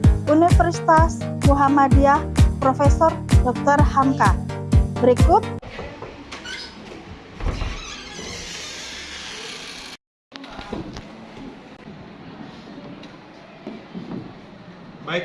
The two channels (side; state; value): both; identical; correlation 1.00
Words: Universitas Muhammadiyah Profesor Dr. Hamka. Berikut